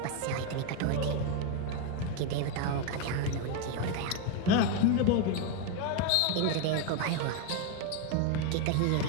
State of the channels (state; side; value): different; both; correlation 0.02